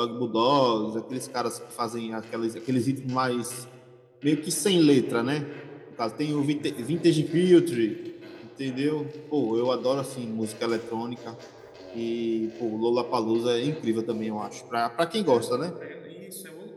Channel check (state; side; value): identical; both; correlation 1.00